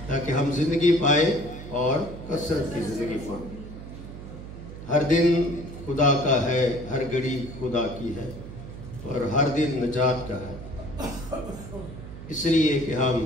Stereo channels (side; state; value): right; noise; hum, 12 dB below the sound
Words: تاکہ ہم زندگی پائیں اور کثرت کی زندگی پائیں۔ ہر دن خدا کا ہے، ہر گھڑی خدا کی ہے اور ہر دن نجات کا ہے، اس لیے کہ ہم